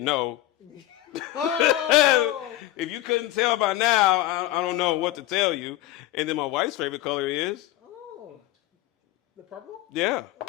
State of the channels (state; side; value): quieter; right; 15.0 dB